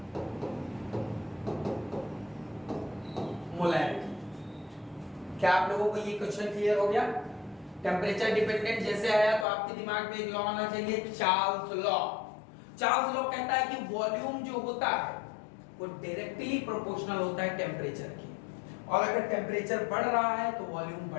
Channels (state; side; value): drops out; right; at 9.5 s